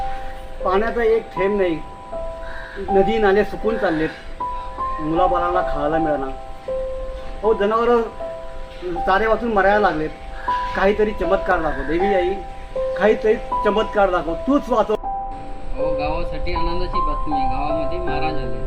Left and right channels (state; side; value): identical; both; correlation 1.00